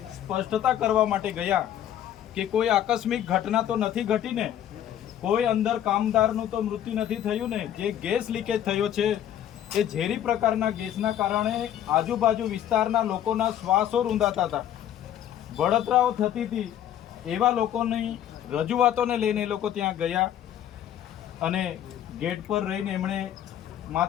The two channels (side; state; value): right; quieter; 10.9 dB